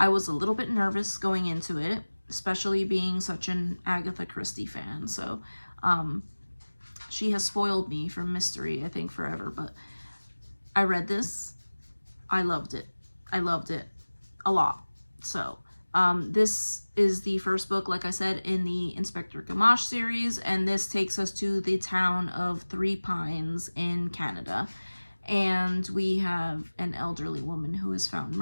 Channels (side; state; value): both; inverted; correlation -1.00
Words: was a little bit nervous going into it, especially being such an Agatha Christie fan. So she has spoiled me from mystery, I think, forever, but I read this. I loved it. I loved it a lot. So this is the first book, like I said, in the Inspector Gamache series, and this takes us to the town of Three Pines in Canada. And we have an elderly woman who is found